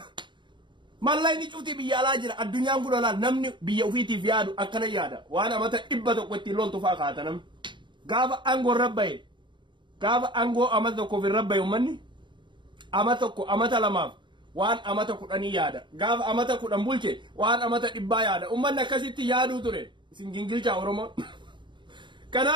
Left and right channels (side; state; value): left; late; 0.23 ms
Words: mallayni cufti biyya alaa jira addunyaan kun olaal namni biyya ofiitiif yaadu akkana yaada waan amata 100 ittiin loltu faa kaata namni gaafa angoo rabbaye gaafa angoo amata tokkoof rabbaye ummanni amata tokko amata lamaaf waan amata 10 yaada gaafa amata 10 bulche waan amata 100 yaada ummanni akkasitti yaaduu ture isin gingilchaa Oromoo